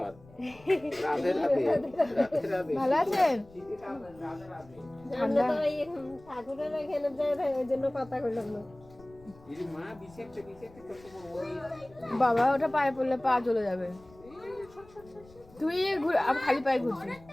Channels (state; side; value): noise; left; rumble, 24 dB below the sound